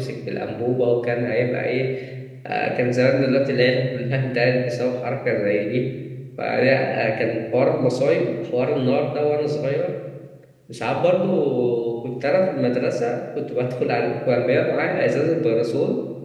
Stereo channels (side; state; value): both; identical; correlation 1.00